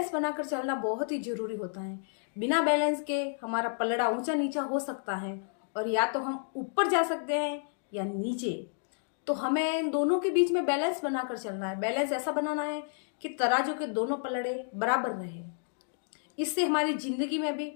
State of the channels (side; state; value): right; silent; digital silence